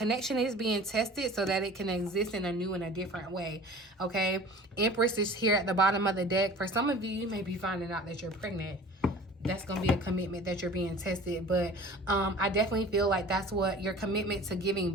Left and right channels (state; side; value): normal; both; correlation 0.43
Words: is being tested so that it can exist in a new and a different way. Okay. Empress is here at the bottom of the deck. For some of you, you may be finding out that you're pregnant. That's going to be a commitment that you're being tested. But I definitely feel like that's what your commitment to giving